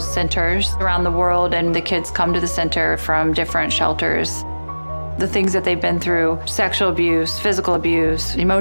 centers around the world, and the kids come to the center from different shelters. The things that they've been through, sexual abuse, physical abuse,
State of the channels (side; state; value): both; inverted; correlation -1.00